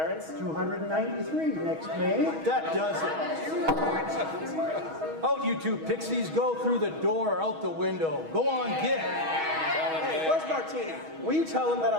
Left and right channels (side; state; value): left; late; 6.3 ms